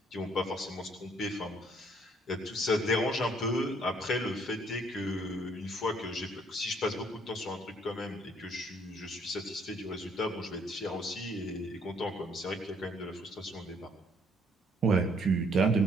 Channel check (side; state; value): both; normal; correlation 0.65